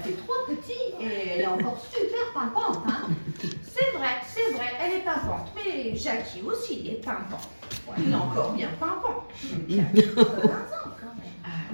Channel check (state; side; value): inverted; both; correlation -1.00